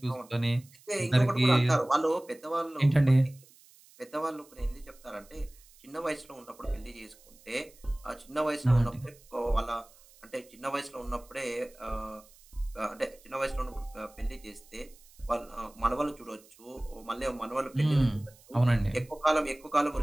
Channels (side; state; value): right; noise; hiss, 26 dB below the sound